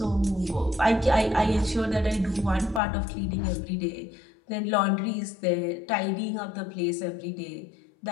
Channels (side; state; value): right; drops out; at 2.8 s